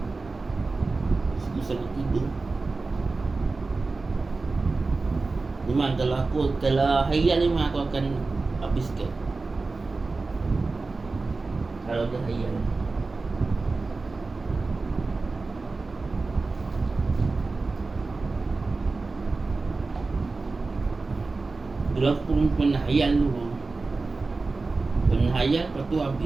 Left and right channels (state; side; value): quieter; left; 3.7 dB